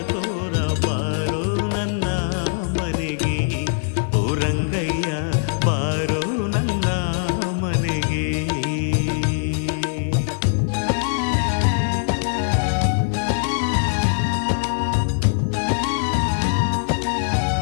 ತೋರ. ಬಾರೋ ನನ್ನ ಮನೆಗೆ ಓ ರಂಗಯ್ಯ, ಬಾರೋ ನನ್ನ ಮನೆಗೆ.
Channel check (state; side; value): silent; right; 64 dB below the other